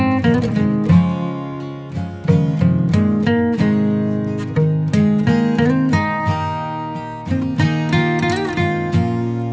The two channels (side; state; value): both; identical; correlation 1.00